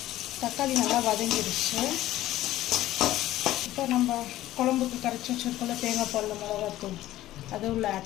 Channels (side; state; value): right; quieter; 14.7 dB